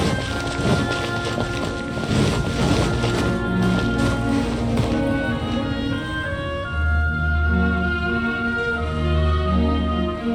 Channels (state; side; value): identical; both; correlation 1.00